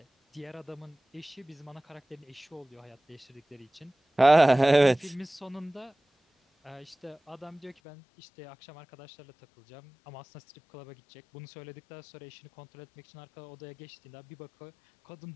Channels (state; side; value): drops out; right; at 7.8 s